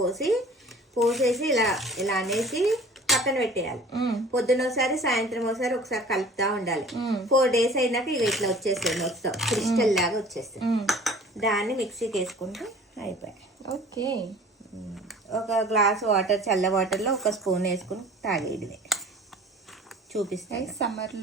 పోసేసి ఇలా అనేసి పక్కన పెట్టేయాలి. పొద్దున ఒకసారి సాయంత్రం ఒకసారి కలుపుతా ఉండాలి. 4 days అయినాక ఇక ఇట్లా వచ్చేస్తుంది, మొత్తం క్రిస్టల్ లాగా వచ్చేస్తుంది. దాన్ని మిక్సీకి వేసుకుంటే అయిపోయాయి. ఓకే. ఒక గ్లాస్ వాటర్, చల్ల వాటర్లో 1 స్పూన్ వేసుకుని తాగేయడమే. చూపిస్తాయి.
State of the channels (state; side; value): normal; both; correlation 0.47